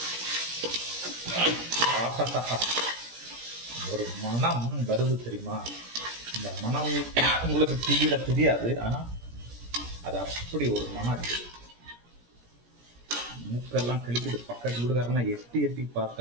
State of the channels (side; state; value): left; late; 17 ms